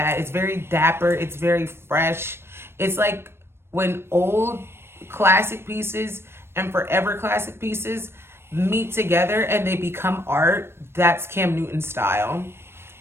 It's very dapper. It's very fresh. It's like when old classic pieces and forever classic pieces meet together and they become art. That's Cam Newton's style.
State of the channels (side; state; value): left; late; 0.12 ms